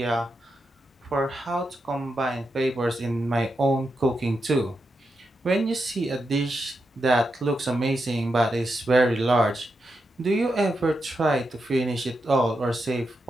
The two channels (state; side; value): normal; both; correlation 0.86